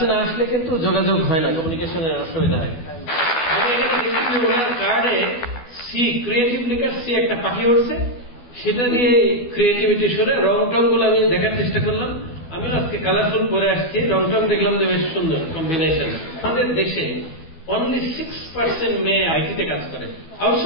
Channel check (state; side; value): late; right; 12 ms